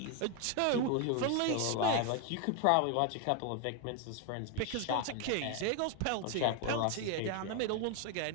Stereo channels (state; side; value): different; both; correlation 0.01